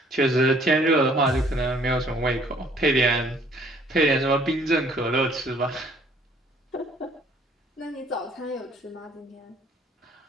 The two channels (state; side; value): normal; both; correlation 0.60